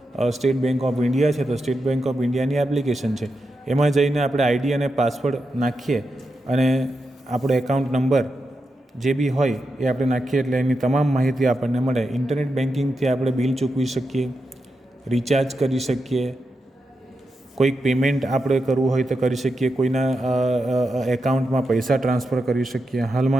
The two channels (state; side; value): normal; both; correlation 0.87